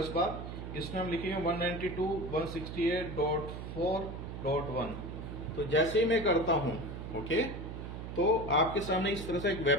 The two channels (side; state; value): right; noise; hum, 8 dB below the sound